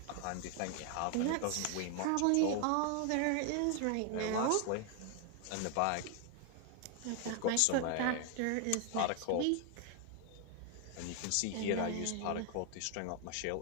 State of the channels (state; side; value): different; both; correlation 0.00